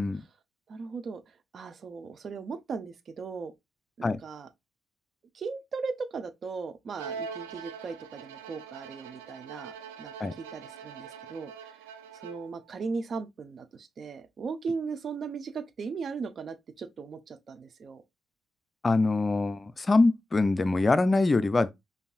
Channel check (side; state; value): both; normal; correlation 0.91